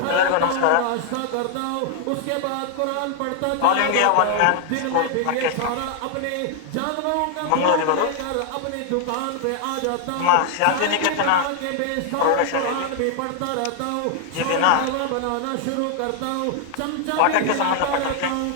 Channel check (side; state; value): both; different; correlation 0.00